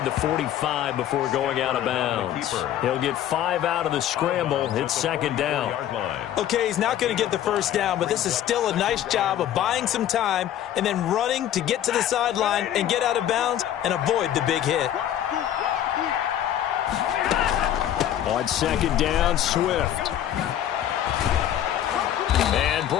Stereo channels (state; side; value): quieter; right; 11.3 dB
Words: the 45 before going out of bounds. He'll get 5 out of the scramble. It's 2nd down. Okay, he's not going to get the first down, but this is still a nice job of buying some time and then running to get to the sideline and get out of bounds and avoid the big hit. On 2nd down, Swift. And